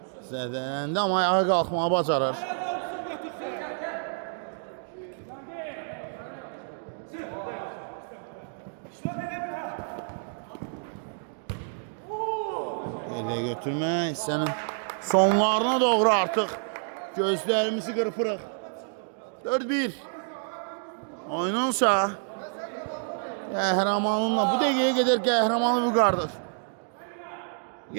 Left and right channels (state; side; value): silent; left; digital silence